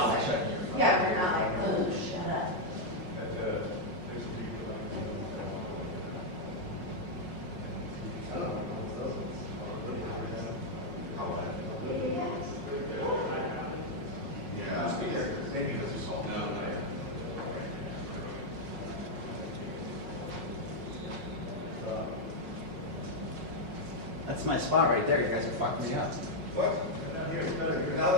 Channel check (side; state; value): left; late; 5.5 ms